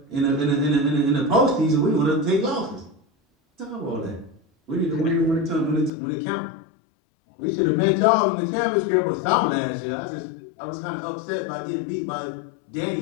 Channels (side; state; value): right; drops out; at 5.9 s